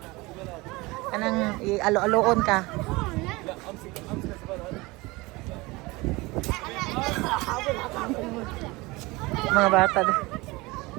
Kanang alo-aloon ka. Mga bata.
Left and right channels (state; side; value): quieter; left; 22.9 dB